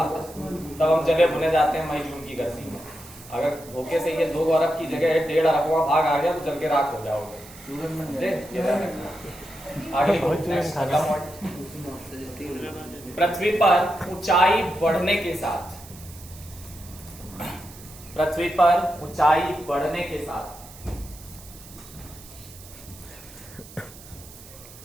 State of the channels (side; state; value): right; noise; hiss, 19 dB below the sound